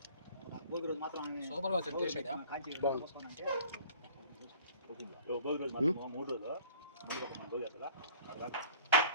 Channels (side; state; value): both; inverted; correlation -0.51